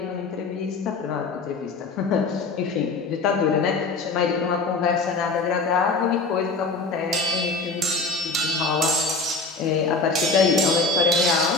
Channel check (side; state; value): right; quieter; 3.8 dB